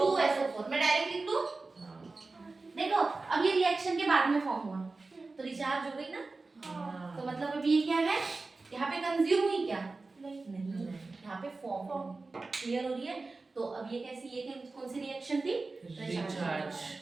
मैं डायरेक्ट लिख दूं, देखो अब ये रिएक्शन के बाद में फॉर्म हुआ तो रिचार्ज हो गई ना, तो मतलब अब ये क्या है, यहाँ पे कंज्यूम हुई क्या, नहीं, यहाँ पे फॉर्म क्लियर हो रही है। तो अब ये कैसी, ये कौन सी रिएक्शन थी, रिचार्ज।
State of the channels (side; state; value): left; quieter; 3.6 dB